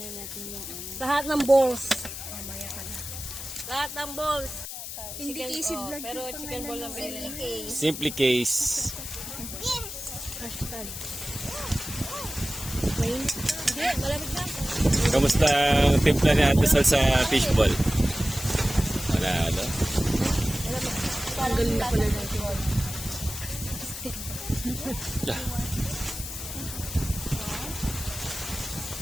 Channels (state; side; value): noise; left; hiss, 8 dB below the sound